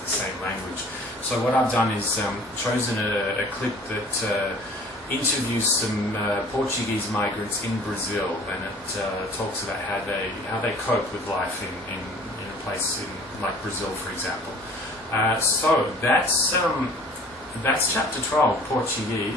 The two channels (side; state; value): both; normal; correlation 0.49